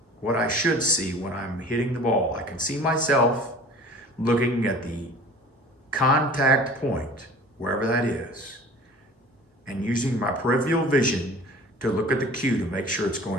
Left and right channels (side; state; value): both; normal; correlation 0.44